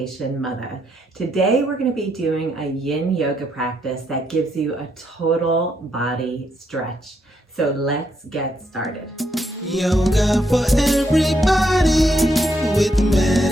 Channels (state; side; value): normal; both; correlation 0.77